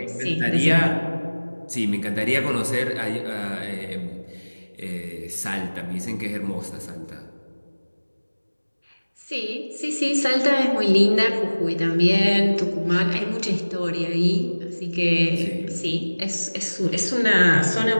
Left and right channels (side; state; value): both; inverted; correlation -1.00